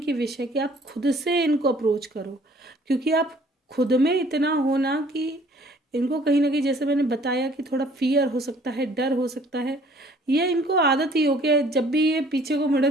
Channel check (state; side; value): normal; both; correlation 0.57